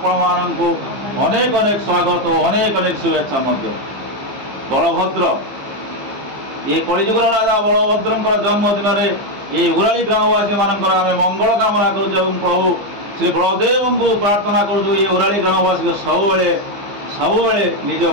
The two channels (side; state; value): left; late; 15 ms